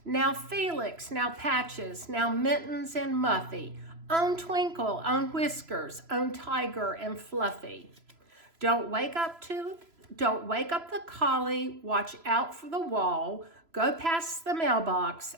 Now Felix, now Patches, now Mittens and Muffy, on Twinkle, on Whiskers, on Tiger and Fluffy. Don't wake up the collie, watch out for the wall, go past the mailbox,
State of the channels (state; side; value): late; left; 3.0 ms